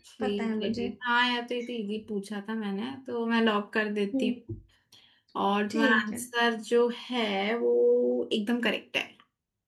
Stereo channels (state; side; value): identical; both; correlation 1.00